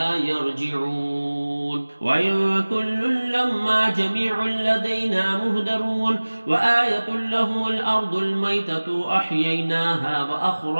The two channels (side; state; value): both; inverted; correlation -1.00